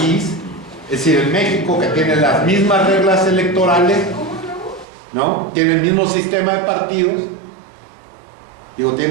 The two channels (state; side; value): drops out; left; at 4.9 s